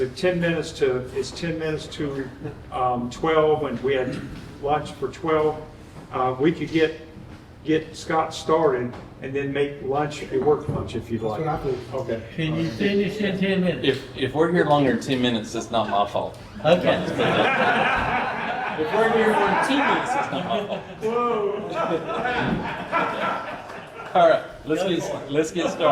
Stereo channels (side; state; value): both; identical; correlation 1.00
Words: 10 minutes to 12, and we had lunch for 12. We could get Scott started and then make lunch a work lunch if you'd like. Okay. Can you finish in 10 minutes? If we're here longer than 10 minutes, it's not my fault. Okay. If we're here more than 2 minutes, it's not my fault. All right, let's get